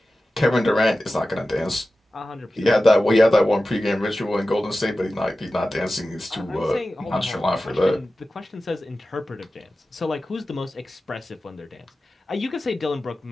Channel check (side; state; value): both; normal; correlation 0.95